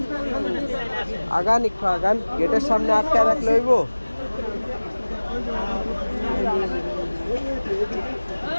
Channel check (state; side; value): inverted; both; correlation -1.00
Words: আগান একটু আগান, গেটের সামনে আটকে রাখলে হইব।